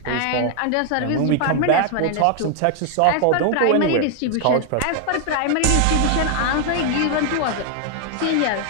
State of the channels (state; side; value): different; both; correlation 0.00